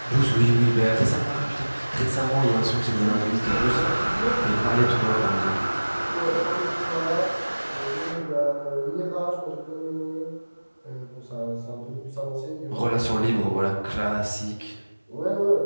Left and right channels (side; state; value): both; inverted; correlation -1.00